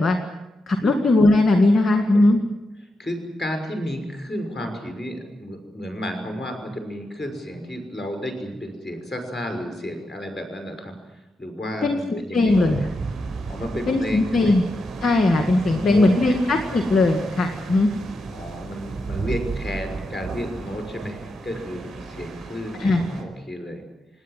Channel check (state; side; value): normal; both; correlation 0.86